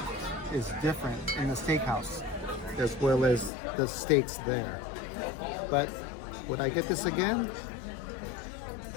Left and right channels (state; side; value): drops out; right; at 3.5 s